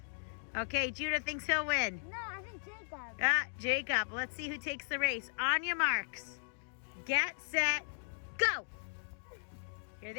Okay, Judah thinks he'll win. No, I think Jacob. Jacob, let's see who takes the race. On your marks, get set, go. Here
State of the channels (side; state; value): right; silent; digital silence